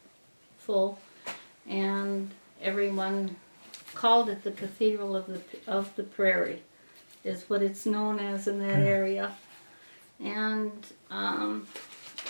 full, and everyone called it the Cathedral of the Prairie, is what it's known as in that area. And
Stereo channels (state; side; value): inverted; both; correlation -1.00